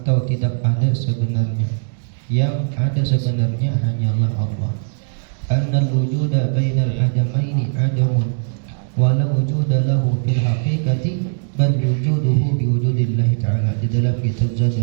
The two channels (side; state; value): left; silent; digital silence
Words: tidak ada sebenarnya. Yang ada sebenarnya hanyalah Allah. Annal wujuda bainal adamaini adamun wala wujuda lahu fil haqiqati bal wujuduhu biwujudillahi ta'ala, di dalam kitab